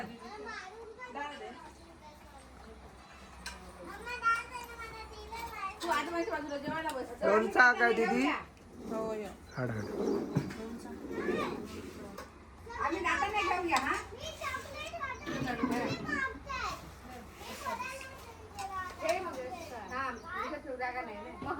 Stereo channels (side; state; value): both; identical; correlation 1.00